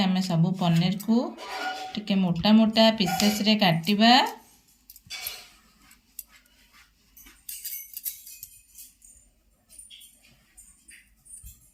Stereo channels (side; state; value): both; identical; correlation 1.00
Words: सब पनीर को टिके मोटा मोटा पीसेस रे काटिबा।